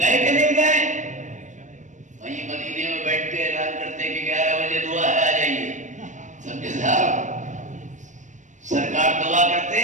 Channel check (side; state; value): left; late; 0.35 ms